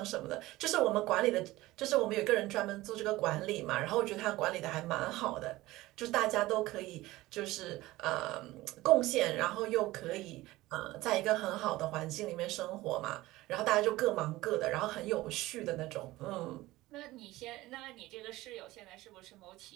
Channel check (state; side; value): quieter; left; 18.1 dB